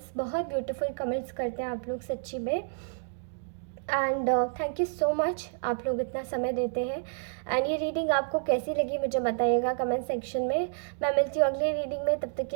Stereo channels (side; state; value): left; silent; digital silence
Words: बहुत ब्यूटीफुल कमेंट्स करते हैं आप लोग सच्ची में, and thank you so much, आप लोग इतना समय देते हैं। एंड ये रीडिंग आपको कैसी लगी मुझे बताइएगा कमेंट सेक्शन में। मैं मिलती हूँ अगली रीडिंग में, तब तक